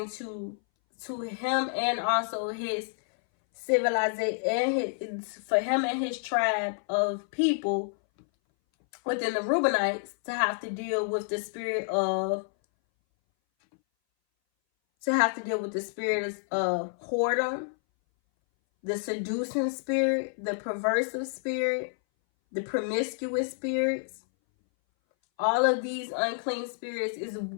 to him, and also his civilization, and for him and his tribe of people within the Reubenites to have to deal with the spirit of whoredom, the seducing spirit, the perversive spirit, the promiscuous spirits. All of these unclean spirits is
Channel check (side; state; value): right; silent; 59 dB below the other